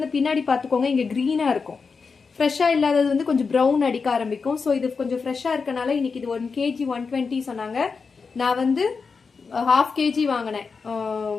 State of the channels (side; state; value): right; quieter; 5.0 dB